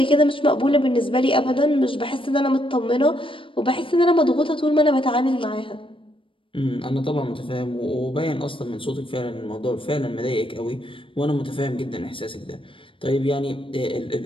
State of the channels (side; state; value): right; late; 0.25 ms